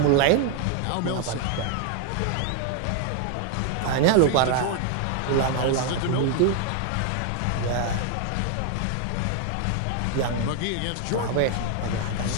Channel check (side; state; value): both; different; correlation 0.00